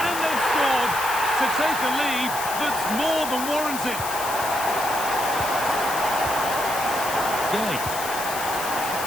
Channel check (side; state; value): left; noise; hiss, 7 dB below the sound